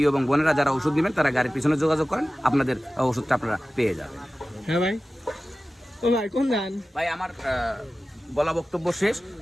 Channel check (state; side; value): normal; both; correlation 0.96